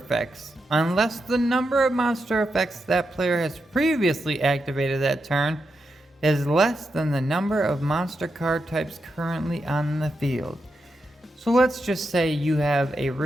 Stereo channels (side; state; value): both; normal; correlation 0.86